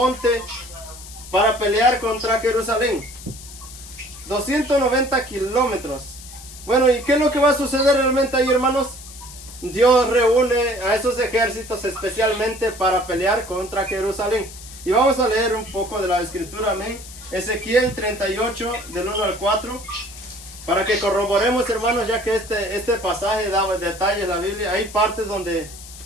para pelear contra Jerusalén. 290 kilómetros. Bueno, ¿y qué es lo que va a suceder realmente ahí, hermanos? Dios reúne a esos ejércitos especialmente para pelear contra Jerusalén. Y vamos a leer un poco de la escritura, amén. Ezequiel 38, del 1 al 4. Para que corroboremos, hermanos, ya que este pasaje da detalles en la Biblia. Hay partes donde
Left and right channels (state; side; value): noise; left; hiss, 16 dB below the sound